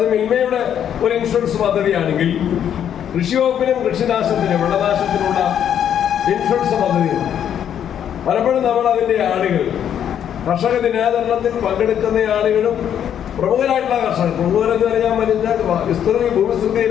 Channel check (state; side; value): quieter; right; 9.4 dB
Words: മിൽമയുടെ ഒരു ഇൻഷുറൻസ് പദ്ധതിയാണെങ്കിൽ കൃഷി വകുപ്പിനും കൃഷിനാശത്തിന്, വിളനാശത്തിനുള്ള ഇൻഷുറൻസ് പദ്ധതിയുണ്ട്. പലപ്പോഴും നമ്മൾ അതിന്റെ ആളുകൾ, കർഷക ദിനാചരണത്തിൽ പങ്കെടുക്കുന്ന ആളുകളും പ്രമുഖരായിട്ടുള്ള കർഷകർ, പ്രമുഖരെന്ന് പറയാൻ വരുന്ന